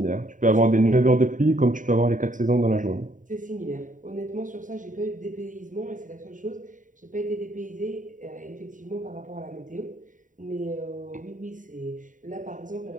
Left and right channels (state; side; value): late; left; 0.38 ms